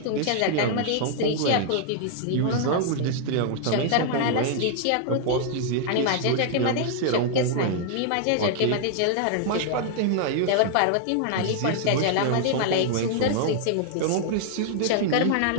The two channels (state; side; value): different; both; correlation -0.01